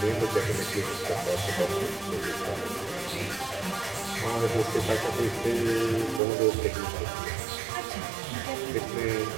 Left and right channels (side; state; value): left; drops out; at 6.2 s